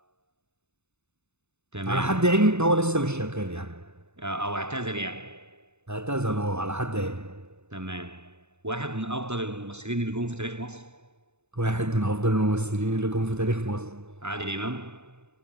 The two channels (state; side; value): late; left; 0.82 ms